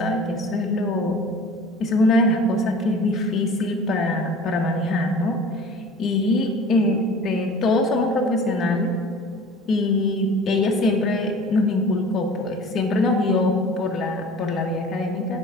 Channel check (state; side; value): normal; both; correlation 0.43